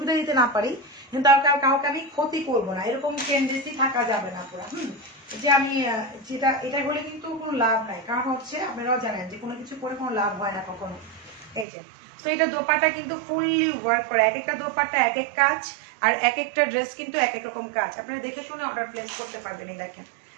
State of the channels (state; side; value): drops out; left; at 11.7 s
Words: দিতে না পারি, কিন্তু কাউকে আমি ক্ষতি করবো না, এরকম টেন্ডেন্সি থাকা যাবে না পুরো। যে আমি যেটা এটা হলে কিন্তু কোনো লাভ নাই, কারণ হচ্ছে আপনারাও জানেন যে কোনো কিছু করে কোনো লাভ হয় না কখনো। এই যে তো এটা দোপাট্টা কিন্তু ফুললি ওয়ার্ক করে, এক একটা দোপাট্টা এক এক কাজ, আর এক একটা ড্রেস কিন্তু এক এক রকম কাজ। আপনারা দেখে শুনে অর্ডার প্লেস করতে পারবেন। এই দেখেন